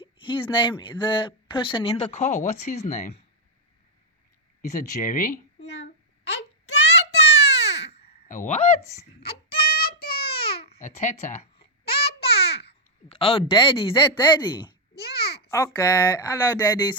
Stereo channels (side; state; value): both; normal; correlation -0.03